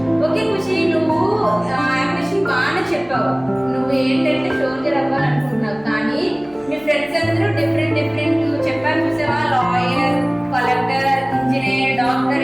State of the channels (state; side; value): noise; right; hum, 27 dB below the sound